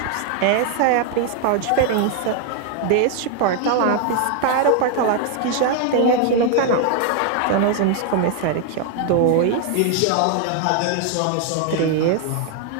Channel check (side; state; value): both; different; correlation 0.00